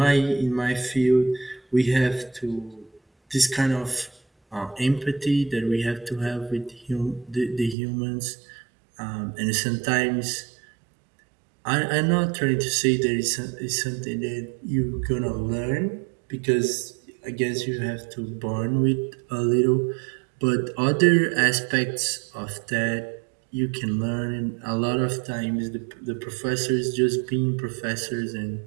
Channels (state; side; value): drops out; left; at 7.8 s